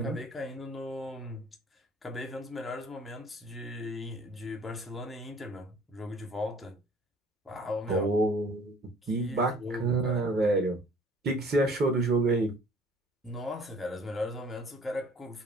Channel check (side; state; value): both; normal; correlation 0.53